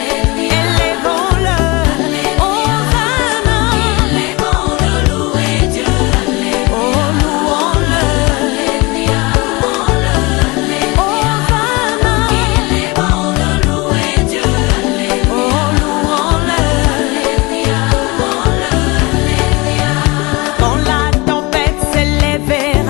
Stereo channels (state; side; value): quieter; right; 24.9 dB